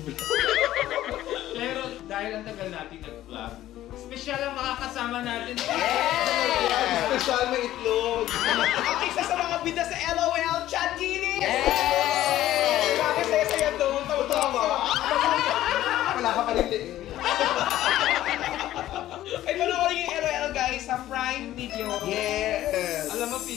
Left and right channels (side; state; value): right; quieter; 13.8 dB